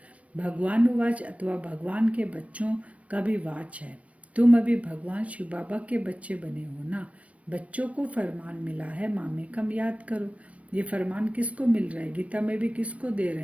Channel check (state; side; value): late; left; 0.065 ms